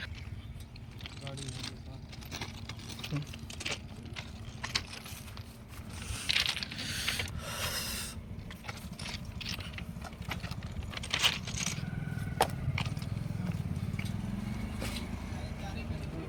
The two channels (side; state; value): both; identical; correlation 1.00